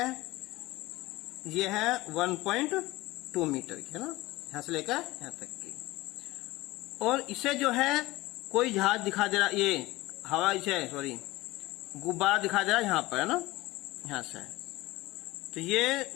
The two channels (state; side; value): quieter; right; 19.3 dB